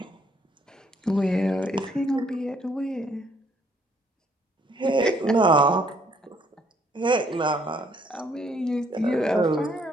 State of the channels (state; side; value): normal; both; correlation 0.67